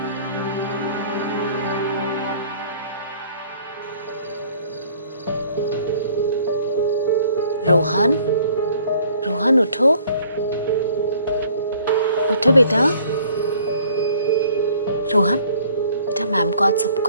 रोहन, रोहन उठो, उठो बेटा। रोहन बेटा, मैम को आज सब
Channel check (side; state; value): both; inverted; correlation -0.56